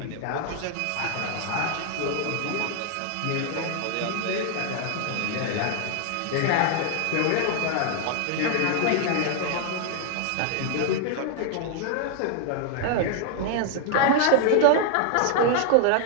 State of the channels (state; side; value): different; both; correlation 0.00